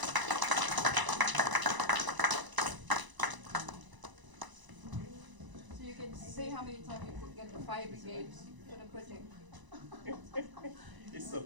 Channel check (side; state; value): left; late; 1.0 ms